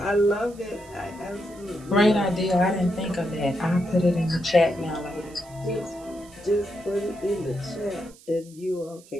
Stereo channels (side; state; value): right; noise; hiss, 24 dB below the sound